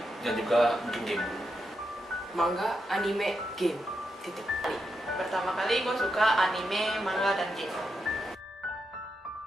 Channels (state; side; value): normal; both; correlation 0.85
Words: dan juga mungkin game. Manga, anime, game. Titik. Pertama kali gue suka anime, manga, dan game.